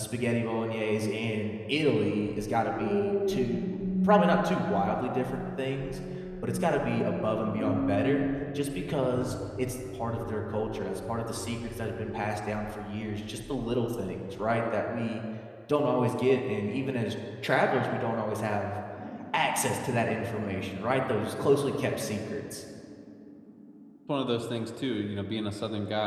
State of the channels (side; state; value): both; identical; correlation 1.00